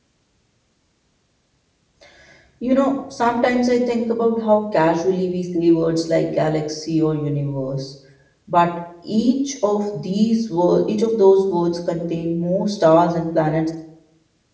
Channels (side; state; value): both; identical; correlation 1.00